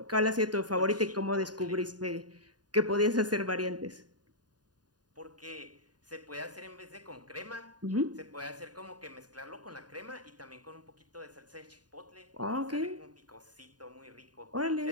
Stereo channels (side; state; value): left; late; 0.69 ms